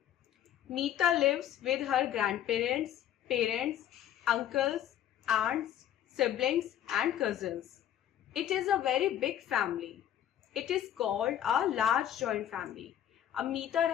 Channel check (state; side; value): quieter; right; 10.8 dB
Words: Meeta lives with her grandparents, parents, uncles, aunts, siblings and cousins. It is a very big family. It is called a large joint family. अब मीता